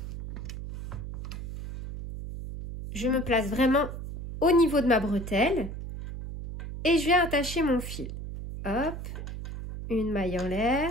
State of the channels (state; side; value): noise; right; hum, 8 dB below the sound